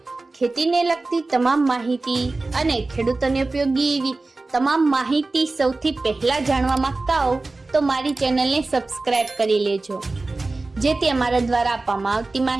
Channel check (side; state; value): left; quieter; 3.3 dB